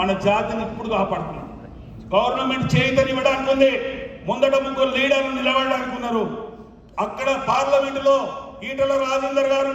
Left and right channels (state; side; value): identical; both; correlation 1.00